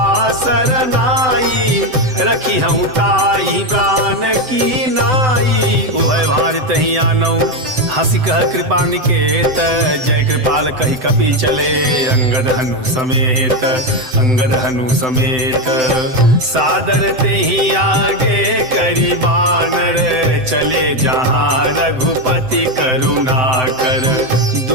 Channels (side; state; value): left; late; 7.8 ms